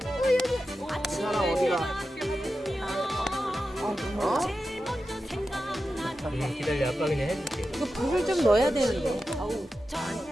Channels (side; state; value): both; normal; correlation 0.91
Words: 사랑 어디가? 어? 기다려, 아빠 그냥 해줄게. 이거 불을 좀 넣어야 되는데. 아우.